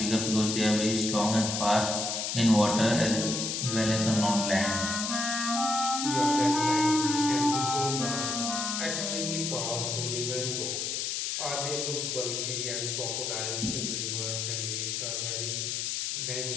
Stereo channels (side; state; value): left; noise; hiss, 1 dB below the sound